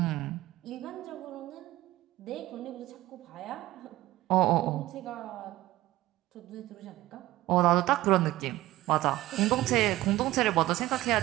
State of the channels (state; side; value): quieter; left; 16.7 dB